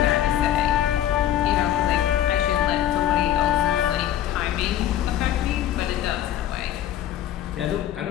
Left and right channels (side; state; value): right; quieter; 11.5 dB